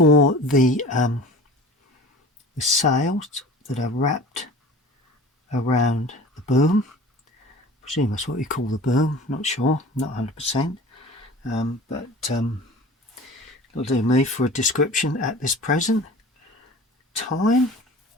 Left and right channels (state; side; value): normal; both; correlation 0.40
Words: the sails that are wrapped around the boom. I presume that's what you call the boom, not sure, not 100%. But it'll do me for a description at this present time.